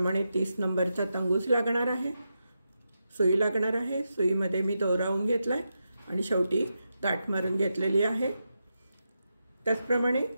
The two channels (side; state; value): both; inverted; correlation -0.87